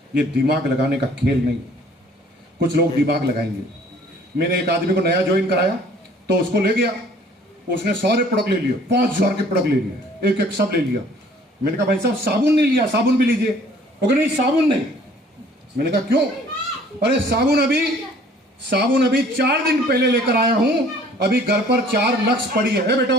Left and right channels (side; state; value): both; normal; correlation 0.55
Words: ये दिमाग लगाने का खेल नहीं। कुछ लोग दिमाग लगाएंगे। मैंने एक आदमी को नया ज्वाइन कराया तो उसको ले गया, उसने सारे प्रोडक्ट ले लिए, 5000 के प्रोडक्ट ले लिए, एक एक सब ले लिया। मैंने कहा भाई साहब साबुन नहीं लिया, साबुन भी लीजिए। वो कहा नहीं साबुन नहीं। मैंने कहा क्यों? अरे साबुन अभी 4 दिन पहले लेकर आया हूं, अभी घर पर 4 लक्स पड़ी है।